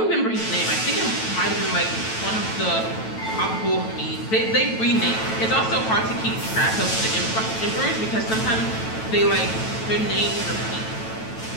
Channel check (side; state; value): right; late; 9.1 ms